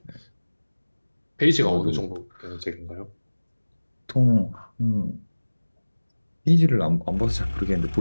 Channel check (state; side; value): inverted; both; correlation -1.00